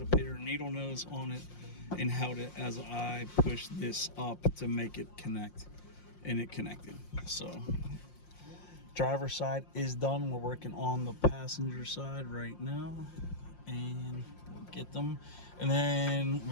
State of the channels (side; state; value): right; late; 5.6 ms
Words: a pair of needle nose on it and held it as I pushed this up to make it connect, and it connected. So driver's side is done. We're working on the passenger side right now, and we'll get them, and then